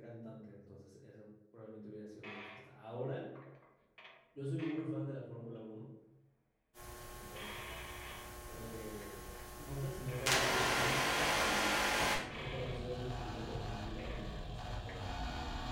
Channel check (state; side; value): identical; both; correlation 1.00